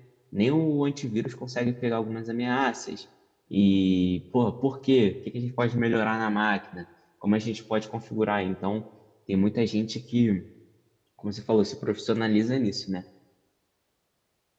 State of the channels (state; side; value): identical; both; correlation 1.00